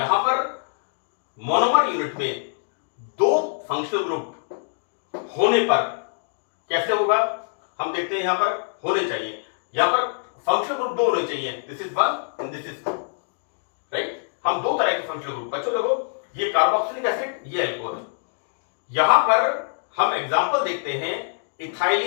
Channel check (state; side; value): silent; right; digital silence